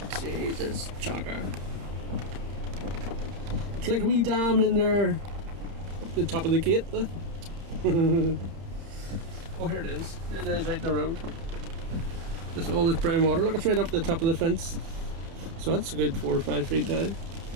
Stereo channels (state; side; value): late; left; 31 ms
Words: Jesus, jogger. It's like a wee dam in there, up the top of the gate. Oh, here it is. It is out in the road. Just all this brown water. Look, it's right up the top of the fence. So that's a good 4 or 5 feet down.